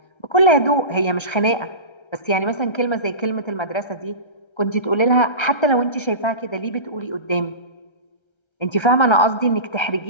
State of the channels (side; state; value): right; late; 1.3 ms